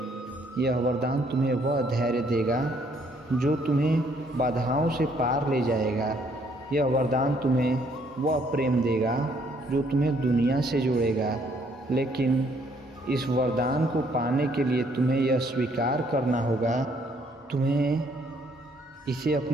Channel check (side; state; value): both; normal; correlation 0.66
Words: यह वरदान तुम्हें वह धैर्य देगा जो तुम्हें बाधाओं से पार ले जाएगा। यह वरदान तुम्हें वह प्रेम देगा जो तुम्हें दुनिया से जोड़ेगा। लेकिन इस वरदान को पाने के लिए तुम्हें यह स्वीकार करना होगा, तुम्हें इसे